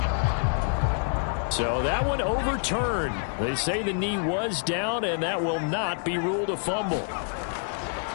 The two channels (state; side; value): silent; right; 58 dB below the other